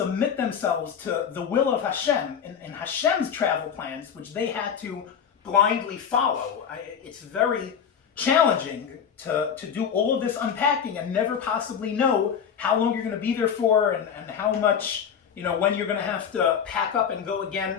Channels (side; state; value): right; quieter; 7.7 dB